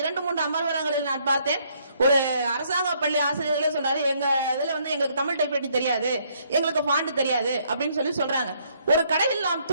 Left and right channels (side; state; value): both; inverted; correlation -0.68